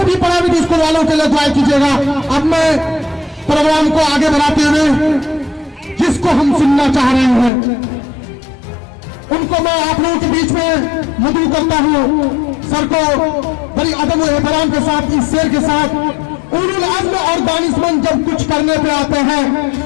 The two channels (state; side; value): drops out; right; at 7.5 s